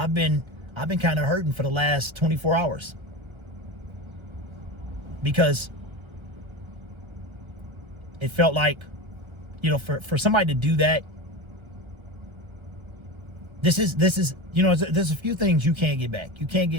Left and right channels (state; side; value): late; left; 1.3 ms